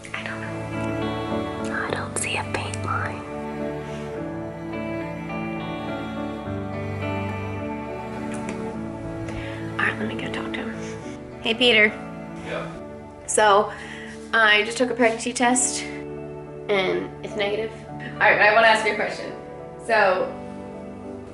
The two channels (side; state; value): both; identical; correlation 1.00